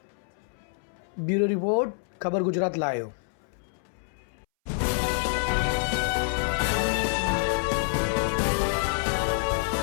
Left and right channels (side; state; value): right; silent; 60 dB below the other